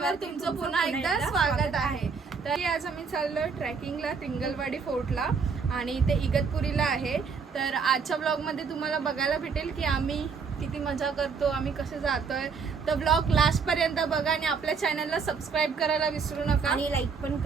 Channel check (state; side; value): quieter; left; 5.4 dB